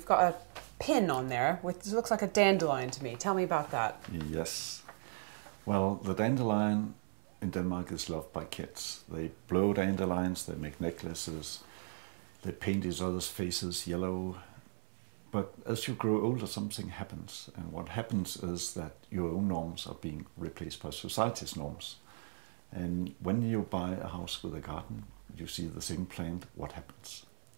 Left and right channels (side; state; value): left; silent; 53 dB below the other